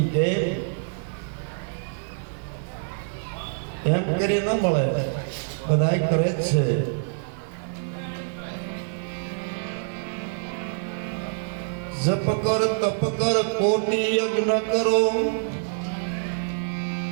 કે એમ કરી ન મળે, બધાય કરે જ છે। જપ કર તપ કર કોટી યજ્ઞ કરો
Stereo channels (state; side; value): silent; left; digital silence